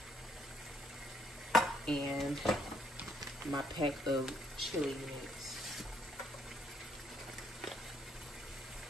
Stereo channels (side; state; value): both; normal; correlation 0.69